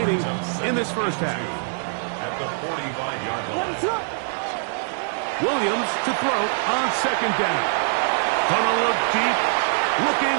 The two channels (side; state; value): left; silent; digital silence